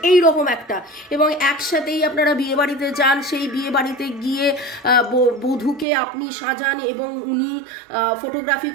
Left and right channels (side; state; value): left; drops out; at 5.9 s